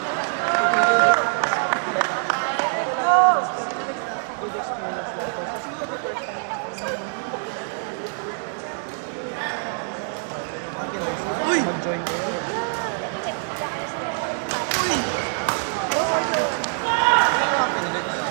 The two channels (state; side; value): silent; left; 59 dB below the other